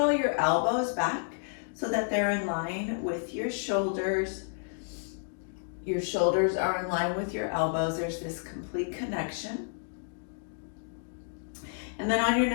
your elbows back so that they're in line with your shoulders. Your shoulders are in line with your elbows. There's this complete connection. And then on your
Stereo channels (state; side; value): silent; right; digital silence